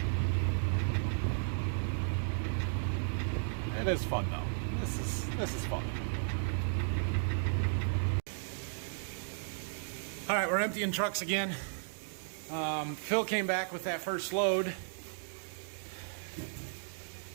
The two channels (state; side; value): silent; left; digital silence